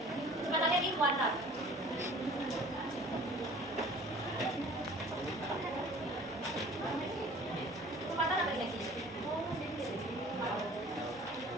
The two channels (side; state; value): both; normal; correlation 0.48